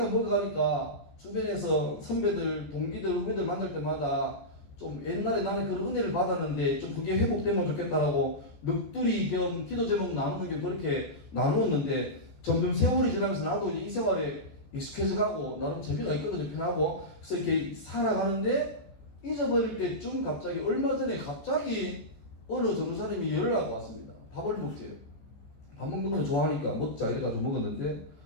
먹어가니까 주변에서 선배들, 동기들, 후배들 만날 때마다 좀 옛날에 나는 그런 은혜를 받았는데 좀 그게 회복되면 좋겠다라고 넋두리 겸 기도 제목 나누는 게 그렇게 나누었는데 점점 세월이 지나면서 나도 이제 이 생활에 익숙해져 가고 나름 재미가 있거든요. 편하고. 그래서 이렇게 살아가는데 잊어버릴 때쯤 갑자기 얼마 전에 갑자기 어느 전도사님이 연락이 왔습니다. 밥을 먹재요. 밥 먹는 걸 좋아하니까 먹자 이래가지고 먹었는데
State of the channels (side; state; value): right; late; 14 ms